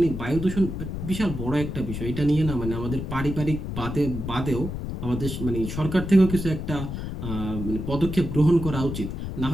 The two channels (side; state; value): left; noise; rumble, 5 dB below the sound